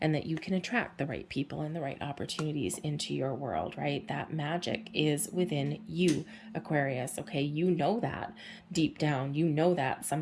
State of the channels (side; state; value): both; identical; correlation 1.00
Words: and that you can attract the right people and the right opportunities into your world, right? That magic is within you, Aquarius. Okay, you know that deep down, you know that.